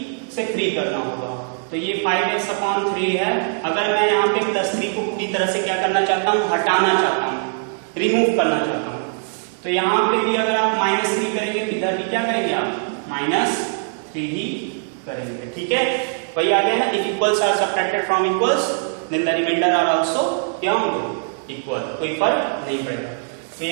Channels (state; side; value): silent; left; 65 dB below the other